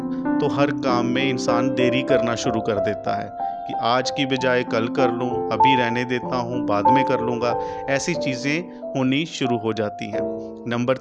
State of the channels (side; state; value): both; identical; correlation 1.00